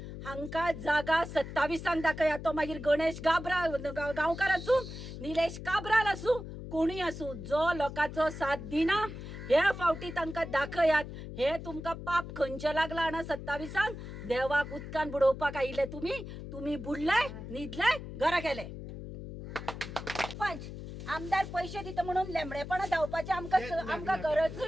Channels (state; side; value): noise; left; hum, 10 dB below the sound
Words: हांका जागा 27 दाखया तो मागीर गणेश गांवकार आसूं निलेश काब्राल आसूं कोणी आसूं जो लोकांचो साथ दिना हे फावटी तांकां दाखयात हे तुमकां पाप खंयचे लागला आना 27 देवाक उदकान बुडोवपाक आयिल्ले तुम्ही बुडले न्हिदले घरा गेले पंच आमदार पैसे दिता म्हणून लेंबडेपणा धांवपाचे आमकां